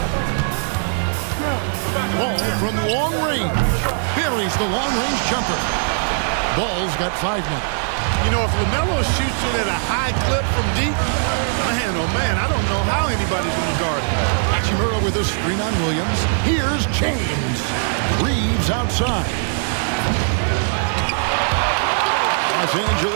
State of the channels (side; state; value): left; silent; digital silence